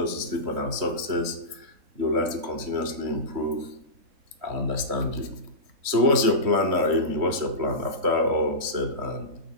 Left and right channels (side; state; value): left; late; 3.2 ms